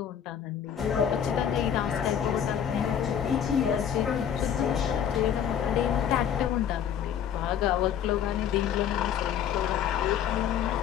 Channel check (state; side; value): quieter; right; 8.9 dB